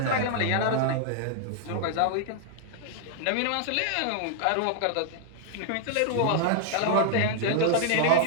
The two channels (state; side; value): different; both; correlation -0.01